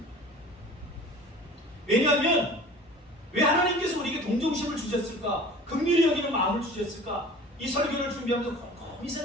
왜냐하면 왜 하나님께서 우리에게 동정심을 주셨을까? 긍휼히 여기는 마음을 주셨을까? 이 설교를 준비하면서 곰곰이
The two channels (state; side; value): normal; both; correlation 0.43